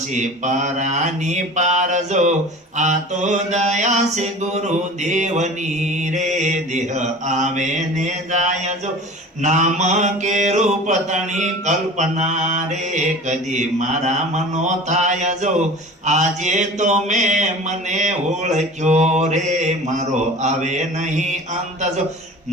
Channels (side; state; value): both; normal; correlation 0.39